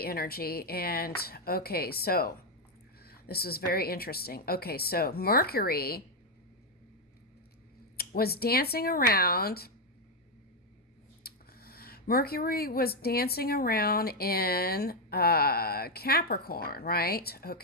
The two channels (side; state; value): both; normal; correlation 0.03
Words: energy, and okay, so this was very interesting. Okay, so Mercury was dancing around. Mercury was dancing around in Capricorn, right?